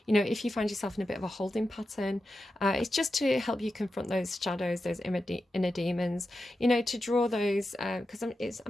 you know, if you find yourself in a bit of a holding pattern, it's just to help you confront those shadows, those inner demons, you know, to draw those, because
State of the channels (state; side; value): normal; both; correlation 0.90